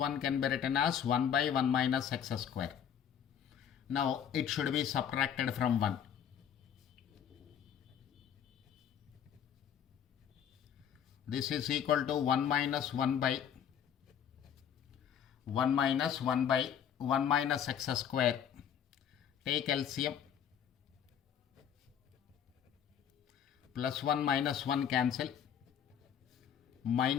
can be written as 1 by 1 minus x square. Now it should be subtracted from 1. This is equal to 1 minus 1 by 1 minus 1 by 1 minus x square. Take LCM. Plus 1 minus 1 cancel.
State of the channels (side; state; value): right; quieter; 8.7 dB